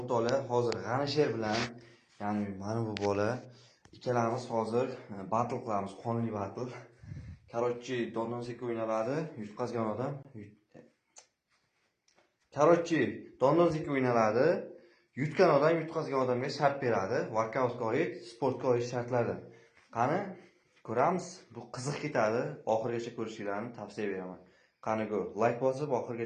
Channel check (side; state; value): both; identical; correlation 1.00